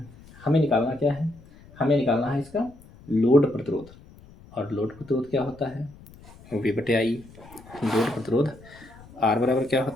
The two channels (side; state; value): left; noise; rumble, 22 dB below the sound